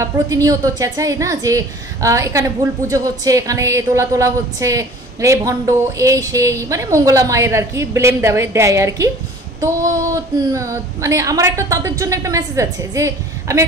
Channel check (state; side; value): normal; both; correlation 0.47